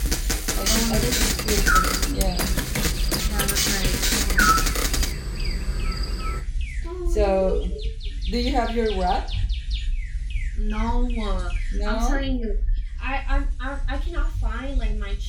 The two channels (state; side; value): identical; both; correlation 1.00